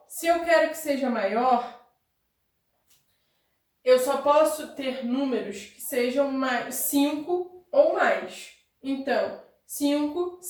se eu quero que seja maior, eu só posso ter números que sejam 5 ou mais. Então, 5,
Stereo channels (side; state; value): both; identical; correlation 1.00